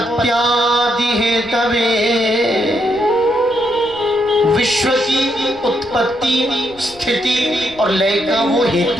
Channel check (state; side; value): noise; left; rumble, 24 dB below the sound